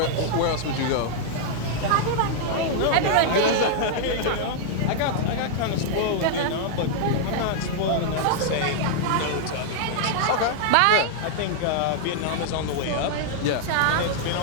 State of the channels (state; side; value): different; both; correlation -0.01